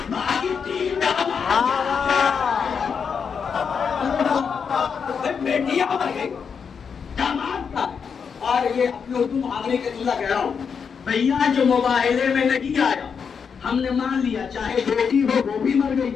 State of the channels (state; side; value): quieter; right; 6.4 dB